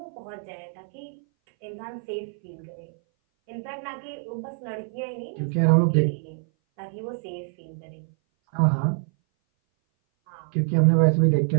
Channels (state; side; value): silent; left; 58 dB below the other